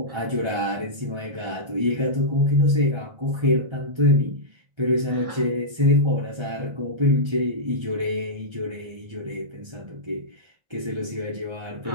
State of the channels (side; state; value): left; late; 1.3 ms